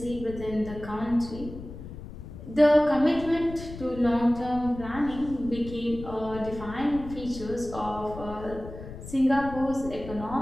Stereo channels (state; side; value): noise; left; rumble, 12 dB below the sound